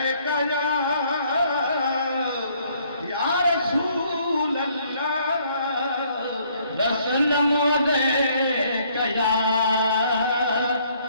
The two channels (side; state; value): both; inverted; correlation -0.65